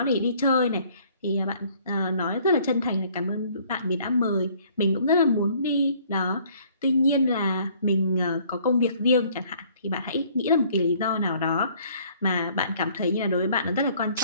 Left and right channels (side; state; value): both; inverted; correlation -0.59